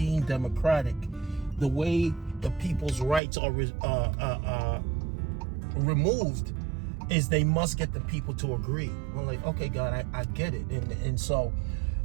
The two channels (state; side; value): drops out; left; at 3.2 s